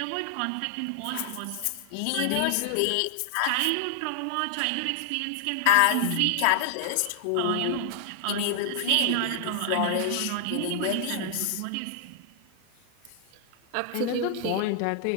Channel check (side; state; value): both; different; correlation 0.00